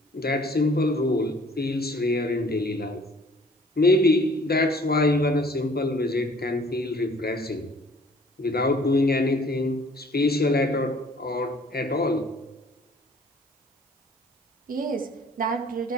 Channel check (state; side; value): normal; both; correlation 0.55